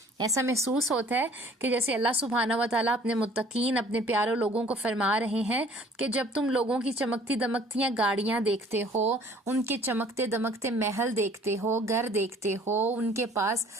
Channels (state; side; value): normal; both; correlation 0.54